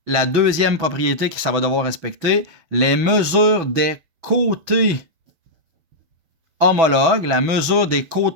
la deuxième propriété que ça va devoir respecter, les mesures des côtés homologues, la mesure des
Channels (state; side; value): late; left; 6.1 ms